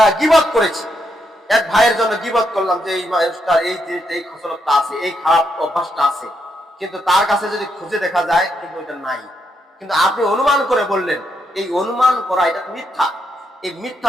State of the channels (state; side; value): normal; both; correlation 0.79